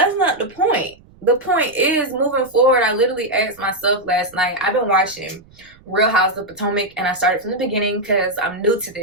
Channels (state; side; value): noise; right; rumble, 27 dB below the sound